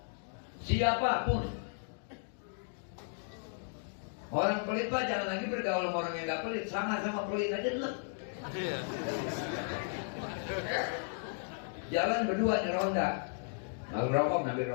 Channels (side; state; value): right; silent; digital silence